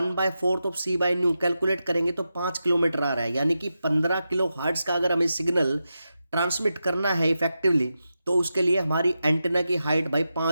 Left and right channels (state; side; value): inverted; both; correlation -0.89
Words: of C by nu calculate करेंगे तो 5 किलोमीटर आ रहा है। यानी कि 15 किलो हर्ट्ज का अगर हमें सिग्नल ट्रांसमिट करना है इफेक्टिवली तो उसके लिए हमारी एंटीना की हाइट भाई